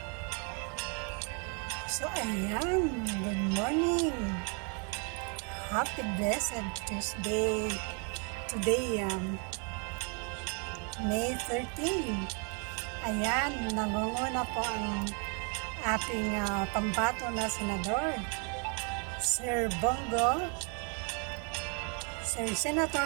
So, ayan. Good morning. Happy blessed Tuesday. Today, May 13. Ayan, nangunguna po ang ating pambato na senador, Sir Bongo, Sir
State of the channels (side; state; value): left; quieter; 37.2 dB